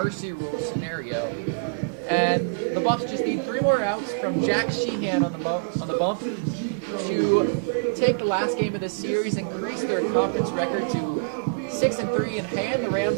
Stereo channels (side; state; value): left; quieter; 38.3 dB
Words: rule scenario. And the Buffs just need 3 more outs from Jack Sheehan on the bump to take the last game of the series, increase their conference record to 6-3, and hand the